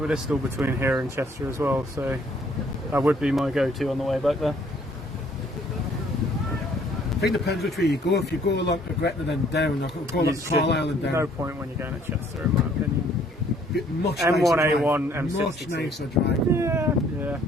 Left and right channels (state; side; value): normal; both; correlation 0.61